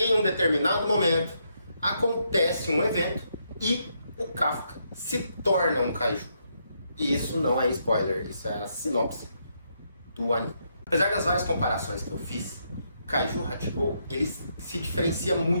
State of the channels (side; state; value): both; inverted; correlation -0.77